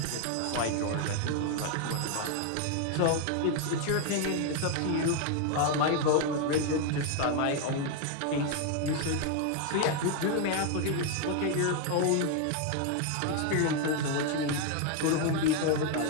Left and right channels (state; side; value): different; both; correlation 0.01